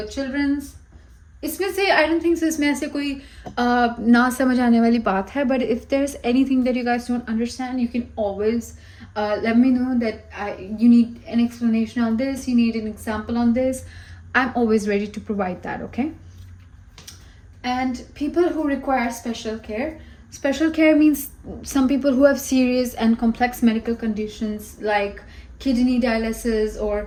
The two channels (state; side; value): identical; both; correlation 1.00